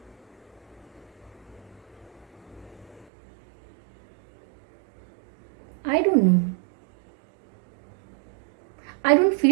आई don't no, I don't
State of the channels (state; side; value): drops out; left; at 3.1 s